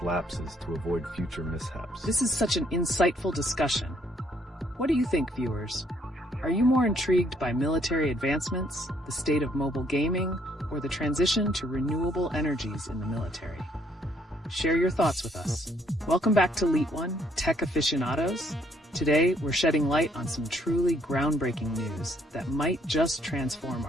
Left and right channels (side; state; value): both; normal; correlation 0.68